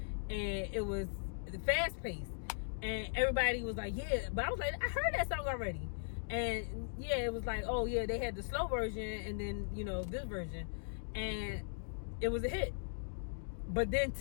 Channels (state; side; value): silent; right; digital silence